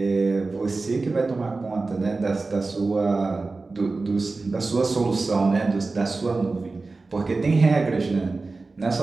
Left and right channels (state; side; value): quieter; left; 3.7 dB